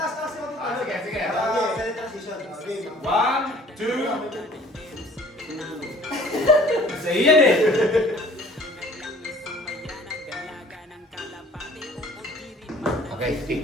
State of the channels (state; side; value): normal; both; correlation 0.52